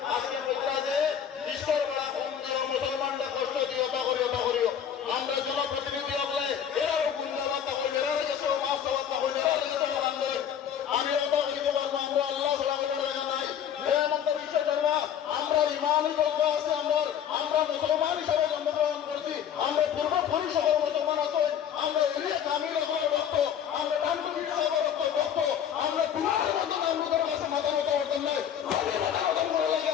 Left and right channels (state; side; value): quieter; right; 9.0 dB